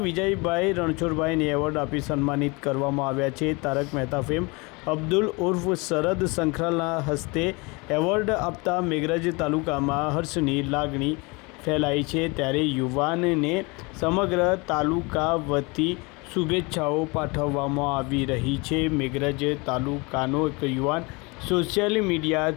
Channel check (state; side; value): quieter; right; 27.3 dB